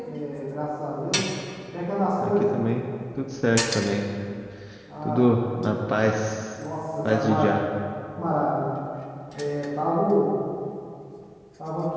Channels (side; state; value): both; identical; correlation 1.00